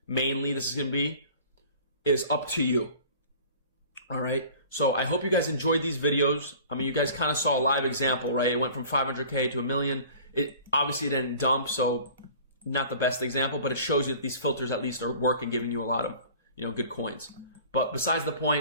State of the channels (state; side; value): inverted; both; correlation -0.46